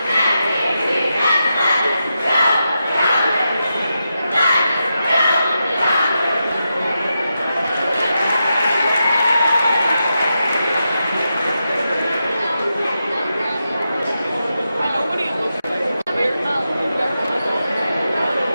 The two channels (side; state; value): both; inverted; correlation -0.87